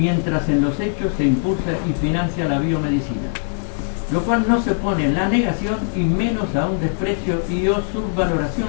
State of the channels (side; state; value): right; silent; 65 dB below the other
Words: en los hechos se impulsa y financia la biomedicina, lo cual no se pone en la negación y menos a un desprecio y o